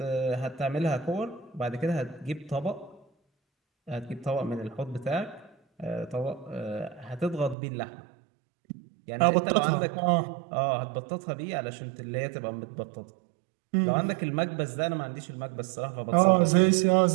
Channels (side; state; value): left; drops out; at 7.6 s